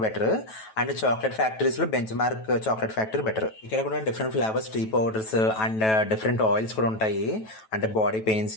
better, and chocolate ఫ్యాక్టరీస్లో Benchmark chocolate factory better. ఇక్కడ కూడా different flavours tea powders and different oils కూడా ఉంటాయి. అంటే బాడీ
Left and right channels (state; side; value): late; right; 9.2 ms